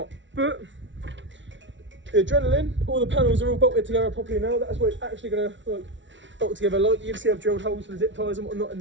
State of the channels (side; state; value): left; late; 0.55 ms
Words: But, the adrenaline, all the panels are all bolted together properly now. That's what it's actually gonna like bolt together. Like you can see I've drilled holes for the zip ties and whatnot in